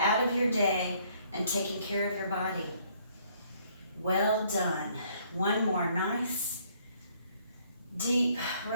of your day and taking care of your body. Well done. One more nice, deep,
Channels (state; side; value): inverted; both; correlation -0.64